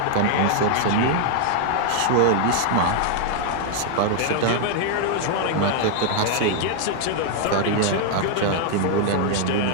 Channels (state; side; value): different; both; correlation 0.00